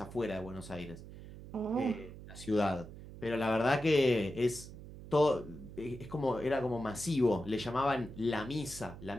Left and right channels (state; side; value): noise; right; hum, 14 dB below the sound